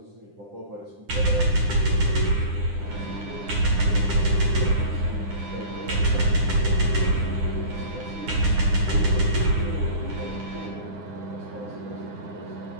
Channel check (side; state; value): left; late; 9.9 ms